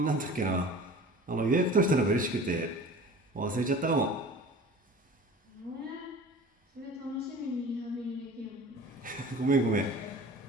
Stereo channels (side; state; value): both; normal; correlation 0.41